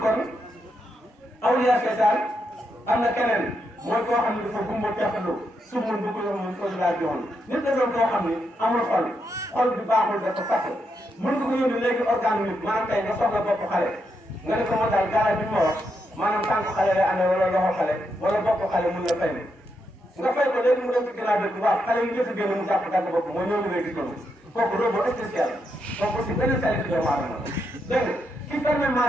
awliya seytaan am na keneen mooy koo xam ne dafa gumba teexalu sumul bu ko mun ko laa joon nit da doon koo xam ne amul xol bi baaxul dafa fàtte mën nga ko yónni léegi organe nit maanaam tey nga soxla bopp xale nga ne ko moo daal garab bi ma wax maanaam tànk xale lay amee wala loxo xale wala bopp xale mun la fay ne nga fay ko léegi mu dem ci ginnaaw bi waaw xale yi njëkk a génn mu jàpp dagg bopp mooy ñëw ngay gis noonu kooku robot spécial kooku aussi benn qualité doomu aadama la dégg nga ki fermé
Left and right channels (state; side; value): normal; both; correlation 0.82